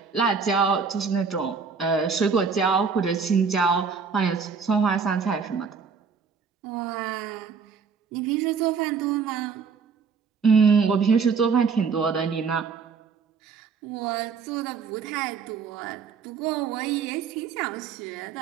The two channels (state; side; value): quieter; left; 5.7 dB